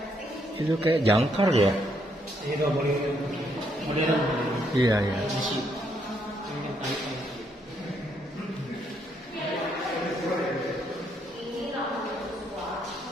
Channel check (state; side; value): normal; both; correlation 0.73